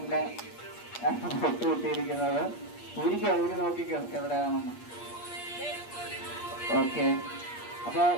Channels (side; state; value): right; late; 8.4 ms